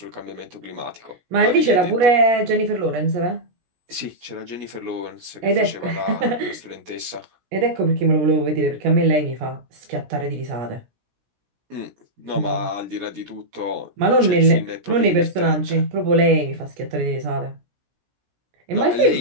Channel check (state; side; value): late; left; 17 ms